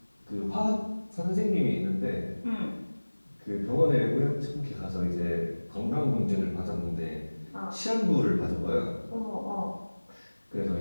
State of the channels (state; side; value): inverted; both; correlation -1.00